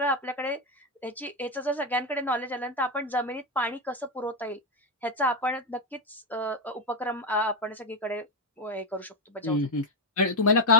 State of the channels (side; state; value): both; normal; correlation 0.07